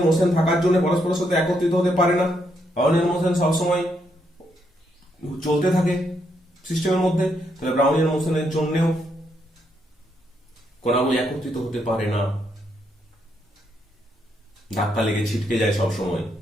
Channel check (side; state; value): both; normal; correlation 0.77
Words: মোশন থাকার জন্য পরস্পরের সাথে একত্রিত হতে পারে না। ব্রাউনিয়ার মোশন সবসময় চলতে থাকে সিস্টেমের মধ্যে, তাহলে ব্রাউনিয়ার মোশনের জন্যও কণাগুলি একত্রিত হতে পারে না, ধাক্কা লেগে ছিটকে যায় সবসময়।